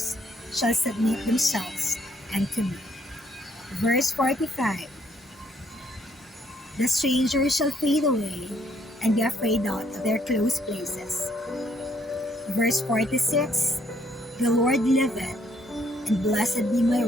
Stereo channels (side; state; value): both; normal; correlation 0.68